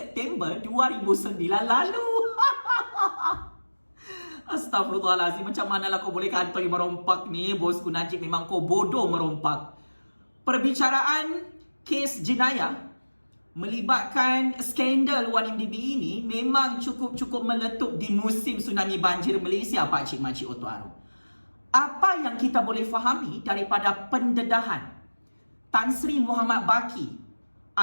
2009 lalu. Astaghfirullahalazim, macam manalah kau boleh kantoi merompak ni? Bosku Najib memang kau bodoh merompak. Perbicaraan kes jenayah melibatkan skandal 1MDB ini memang cukup meletup di musim tsunami banjir Malaysia, Pak Cik Makcik Oto Arum. Apa yang kita boleh fahami daripada pendedahan Tan Sri Muhammad Baki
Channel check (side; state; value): both; inverted; correlation -1.00